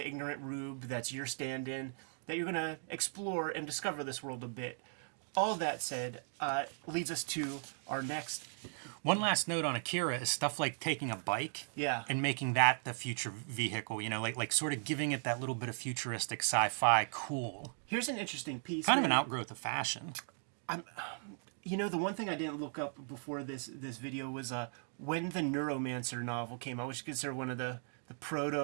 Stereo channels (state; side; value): silent; left; 53 dB below the other